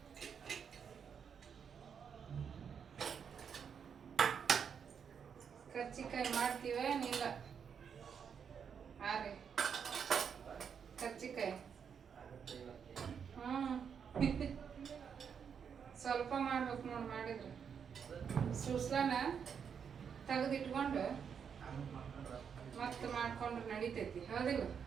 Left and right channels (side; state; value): left; quieter; 7.1 dB